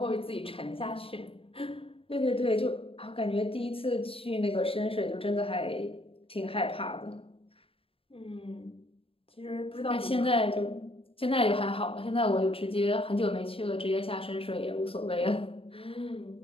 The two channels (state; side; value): late; right; 0.27 ms